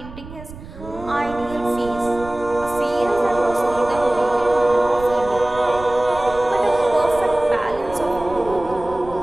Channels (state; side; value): noise; right; rumble, 15 dB below the sound